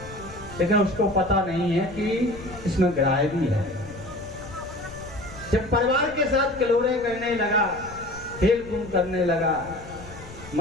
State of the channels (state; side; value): noise; left; rumble, 16 dB below the sound